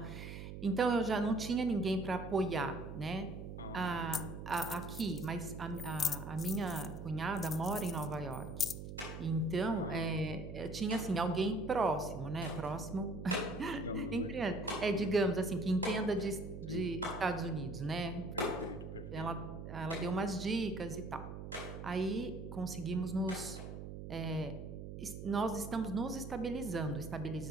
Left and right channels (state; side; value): noise; right; hum, 8 dB below the sound